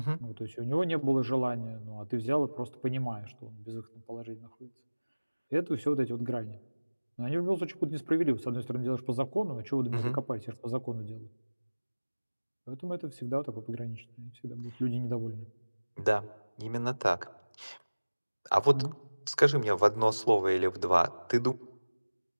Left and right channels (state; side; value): inverted; both; correlation -1.00